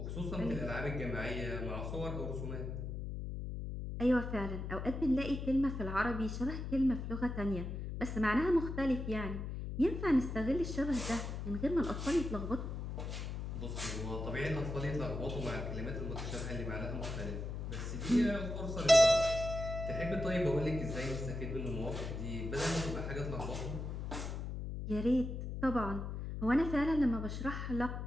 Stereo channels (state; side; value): noise; left; hum, 5 dB below the sound